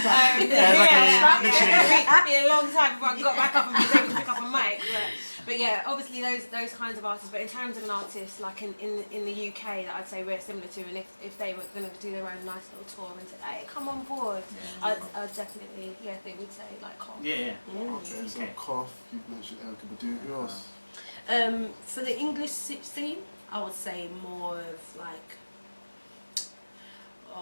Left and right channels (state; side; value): inverted; both; correlation -1.00